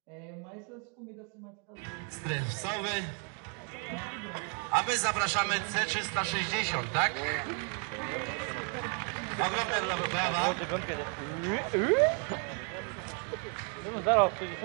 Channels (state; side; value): quieter; left; 38.3 dB